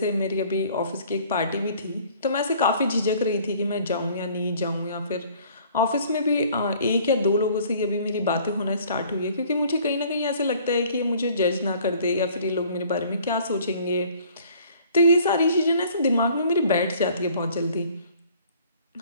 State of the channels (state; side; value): inverted; both; correlation -0.55